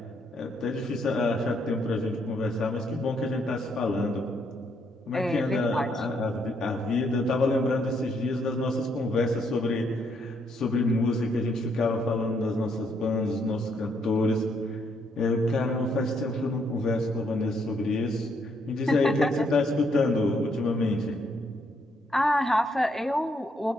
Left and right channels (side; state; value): both; normal; correlation 0.73